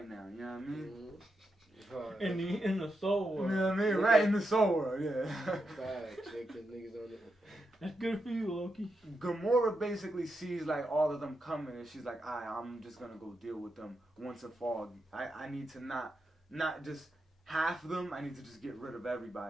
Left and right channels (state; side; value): normal; both; correlation 0.85